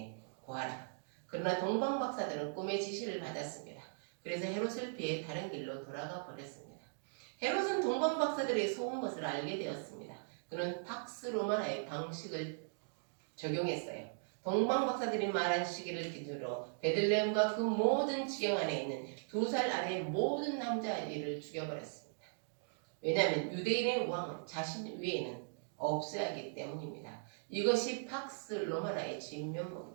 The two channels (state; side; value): silent; left; digital silence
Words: 구하라. 그러나 동방박사들은 꿈의 지시를 받았습니다. 그래서 헤롯을 피해 다른 길로 돌아가 버렸습니다. 헤롯은 동방박사들의 속은 것을 알게 되었습니다. 그는 팍스 로마나의 방식을 적용했어요. 동방박사들이 말한 시기를 기준으로 베들레헴과 그 모든 지경 안에 있는 2살 아래의 모든 남자아이를 죽여버렸습니다. 왜냐하면 유대인의 왕은 자신 위에는 없어야 하기 때문입니다. 이것이 팍스 로마나의